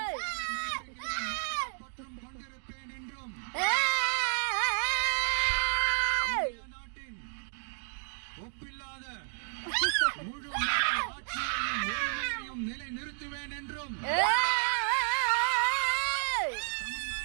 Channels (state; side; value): silent; left; digital silence